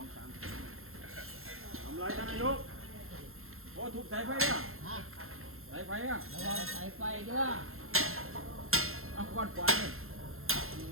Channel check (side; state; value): left; late; 0.61 ms